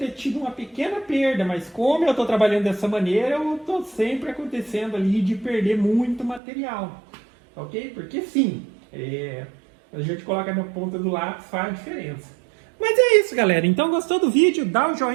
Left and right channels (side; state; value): left; drops out; at 6.4 s